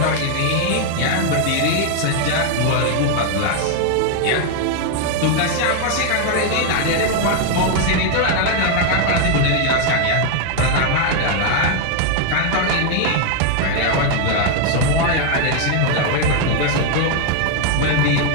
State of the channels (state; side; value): different; both; correlation 0.00